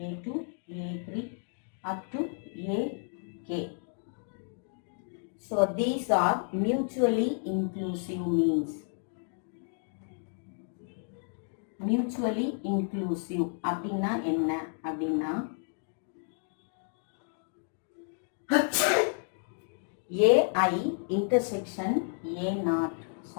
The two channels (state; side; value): silent; right; 55 dB below the other